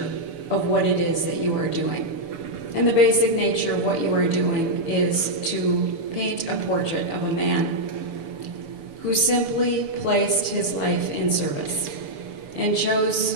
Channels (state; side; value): late; left; 6.9 ms